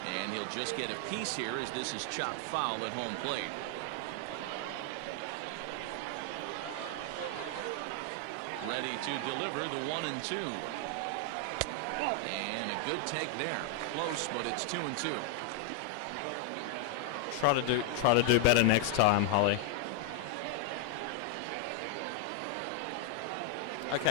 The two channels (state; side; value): different; both; correlation 0.00